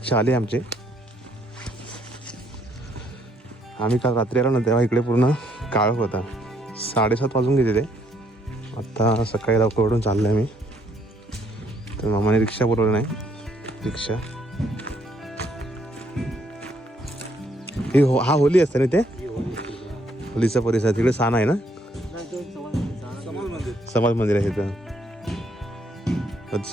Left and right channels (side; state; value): both; normal; correlation 0.70